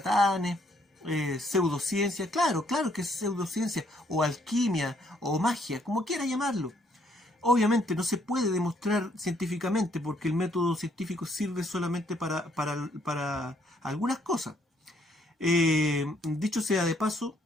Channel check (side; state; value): both; normal; correlation 0.68